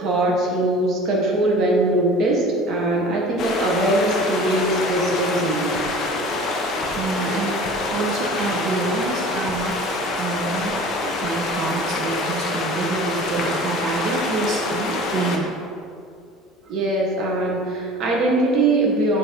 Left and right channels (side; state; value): both; normal; correlation 0.42